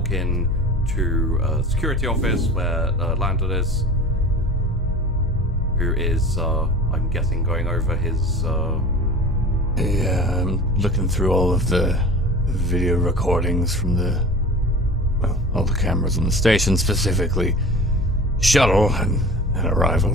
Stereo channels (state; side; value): normal; both; correlation 0.38